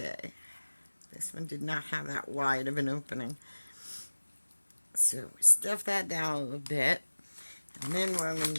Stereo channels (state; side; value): inverted; both; correlation -1.00